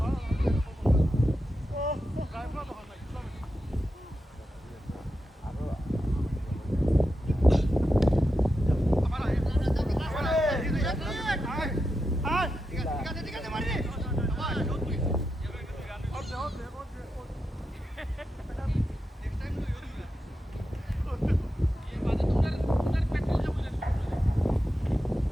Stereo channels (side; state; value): both; normal; correlation 0.88